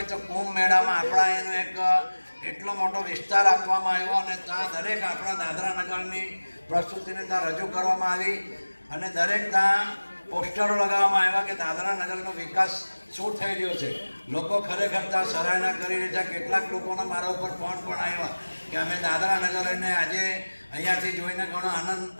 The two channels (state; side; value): inverted; both; correlation -1.00